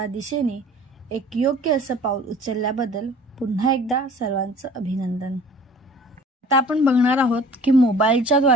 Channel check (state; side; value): normal; both; correlation 0.48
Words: दिशेने एक योग्य असं पाऊल उचलल्याबद्दल पुन्हा एकदा सर्वांचं अभिनंदन। आता आपण बघणार आहोत की मोबाईलच्या